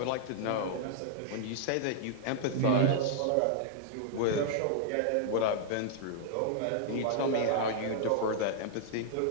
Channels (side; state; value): both; different; correlation -0.01